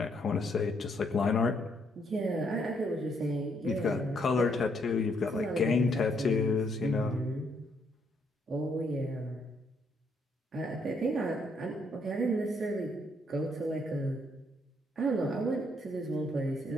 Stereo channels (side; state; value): both; normal; correlation 0.72